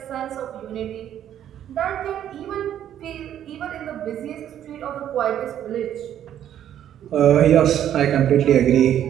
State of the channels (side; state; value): left; quieter; 10.6 dB